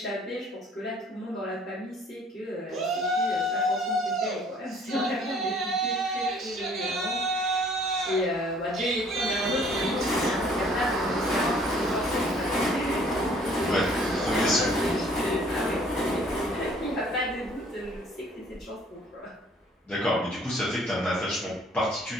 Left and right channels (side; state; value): both; normal; correlation 0.57